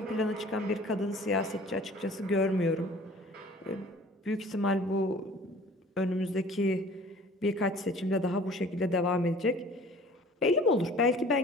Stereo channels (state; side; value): normal; both; correlation 0.48